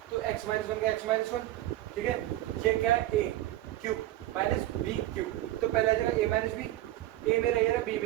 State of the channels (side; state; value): left; quieter; 14.8 dB